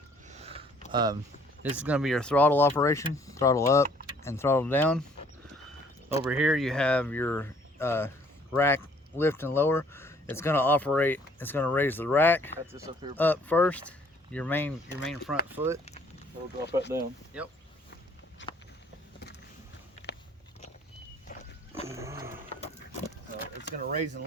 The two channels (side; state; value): both; normal; correlation 0.60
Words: This is gonna be your throttle operation, throttle up and throttle down. Over here you have your rack lift and lower. It's gonna raise the rack up first, your main front foot. It'll drop that down. Yep. It's gonna raise and